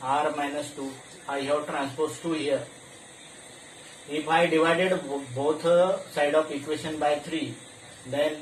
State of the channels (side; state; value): both; identical; correlation 1.00